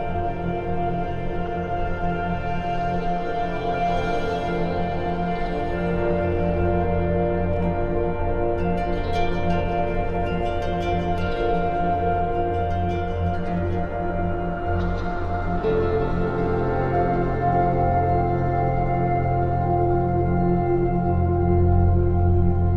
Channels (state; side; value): identical; both; correlation 1.00